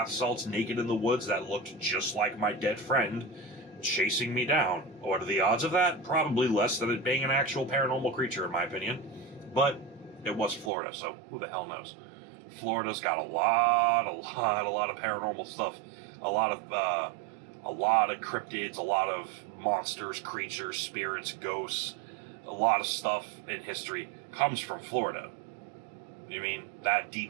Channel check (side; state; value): left; drops out; at 10.7 s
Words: salts, naked in the woods, that looked just like my dead friend, chasing me down. What are the odds of that? Probably less than it being an actual paranormal creature, in my opinion. But it was Florida, so who the hell knows? Florida's got a lot of paranormal stuff. A lot of cryptids, a lot of monsters, creatures, spirits, ghosts. A lot of stuff in history comes from Florida. You mean that